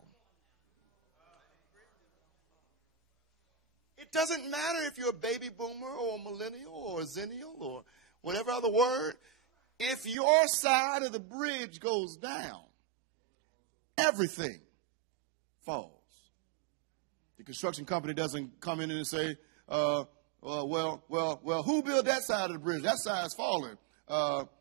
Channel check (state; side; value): drops out; left; at 10.2 s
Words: it doesn't matter if you're a baby boomer or a millennial or a zennial or whatever other word. If your side of the bridge goes down, everything falls. The construction company doesn't come in and say, well, who built that side of the bridge? That side's falling.